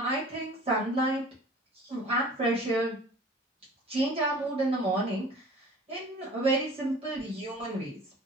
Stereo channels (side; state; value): both; normal; correlation 0.45